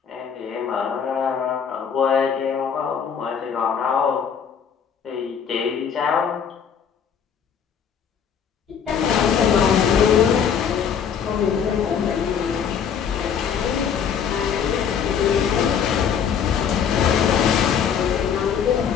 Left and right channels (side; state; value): right; quieter; 7.5 dB